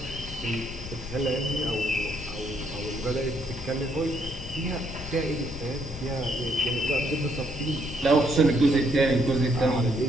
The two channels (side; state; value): left; noise; rumble, 12 dB below the sound